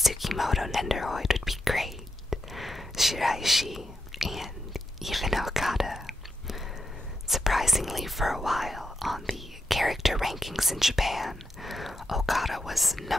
Nendoroid would be great, Shiraishi, and even Okada. Surprisingly, for a while on the character rankings in Japan, Okada was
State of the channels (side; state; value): both; normal; correlation 0.85